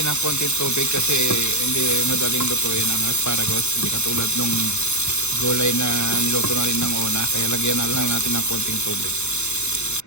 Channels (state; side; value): late; right; 0.82 ms